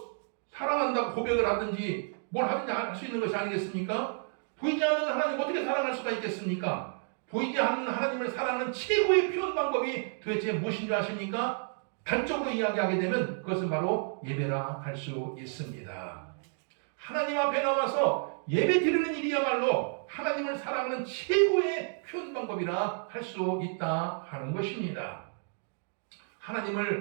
사랑한다고 고백을 하든지 뭘 하든지 할 수 있는 것이 아니겠습니까? 보이지 않는 하나님 어떻게 사랑할 수가 있겠습니까? 보이지 않는 하나님을 사랑하는 최고의 표현 방법이 도대체 무엇인지 아십니까? 단적으로 이야기하게 되면 그것은 바로 예배라 할 수 있습니다. 하나님 앞에 나와서 예배 드리는 일이야말로 하나님을 사랑하는 최고의 표현 방법이라 할 수 있다 하는 것입니다.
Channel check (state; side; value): silent; left; 57 dB below the other